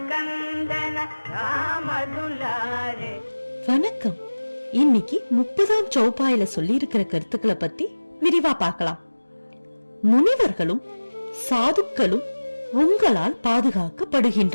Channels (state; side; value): inverted; both; correlation -1.00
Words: राम दुलारे. வணக்கம். இன்னைக்கு 30ஆம் சௌபாயில சொல்லி இருக்கிற கருத்துக்களை பத்தி விரிவா பார்க்கலாம். முனிவர்களும் சாதுக்களும் உங்களால்